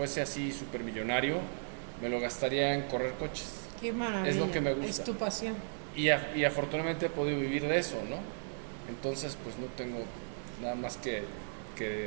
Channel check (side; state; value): left; silent; digital silence